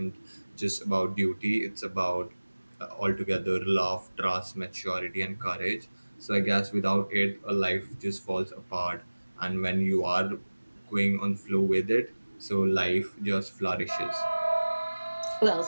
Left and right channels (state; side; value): inverted; both; correlation -1.00